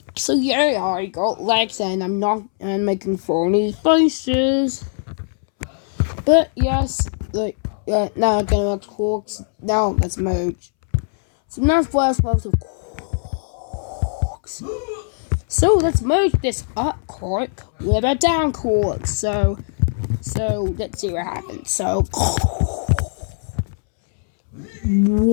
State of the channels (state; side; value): silent; right; 65 dB below the other